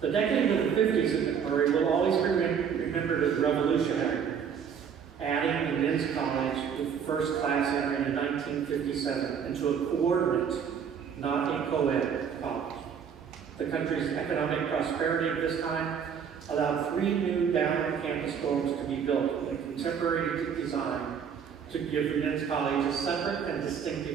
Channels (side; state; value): left; quieter; 7.4 dB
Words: The decade of the 50s at MacMurray will always be remembered as revolutionary, adding the men's college with the first class entering in 1957 into a coordinate, not a co-ed college. The country's economic prosperity at this time allowed 3 new down-campus dorms to be built with a contemporary design to give the men's college a separate and